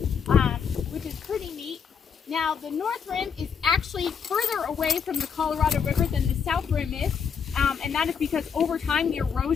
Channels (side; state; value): right; quieter; 6.7 dB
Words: which is pretty neat. Now, the north rim is actually further away from the Colorado River than the south rim is, and that is because over time, the